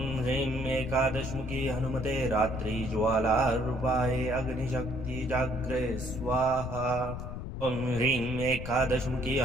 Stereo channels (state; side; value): noise; left; rumble, 7 dB below the sound